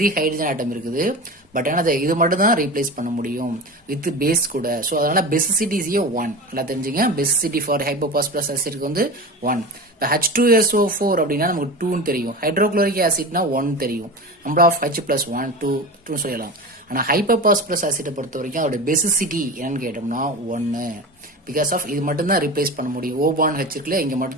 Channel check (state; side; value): normal; both; correlation 0.29